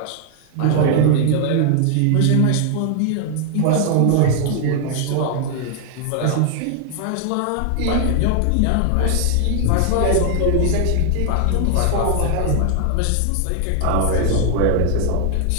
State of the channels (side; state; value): both; different; correlation 0.00